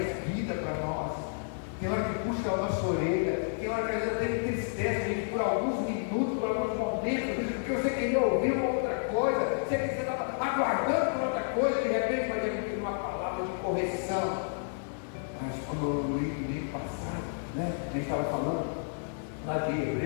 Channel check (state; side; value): silent; right; 57 dB below the other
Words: vida para nós. Tem hora que puxa a nossa orelha, tem hora que a gente entristece a gente por alguns minutos, por alguns momentos, porque você queria ouvir uma outra coisa, você estava aguardando por outra coisa, de repente vai vir uma palavra de correção. Mas como eu li no domingo passado, né, a gente estava falando lá de